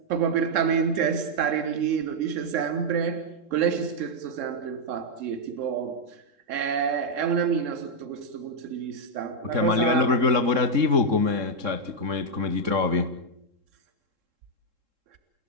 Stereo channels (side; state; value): left; late; 3.7 ms